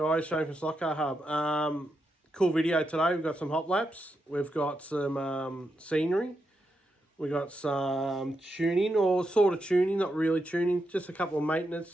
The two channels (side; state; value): both; normal; correlation 0.84